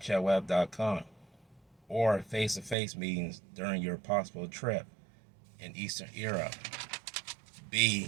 or face-to-face meetings during your possible trip in Eastern Europe.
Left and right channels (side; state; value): left; drops out; at 2.8 s